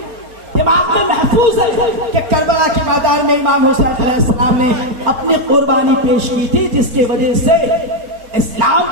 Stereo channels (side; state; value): left; late; 4.3 ms